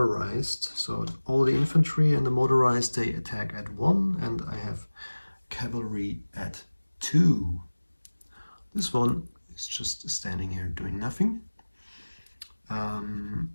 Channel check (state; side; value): inverted; both; correlation -1.00